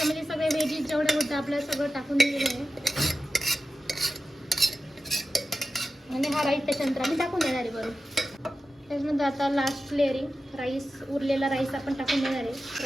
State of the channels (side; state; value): both; normal; correlation 0.92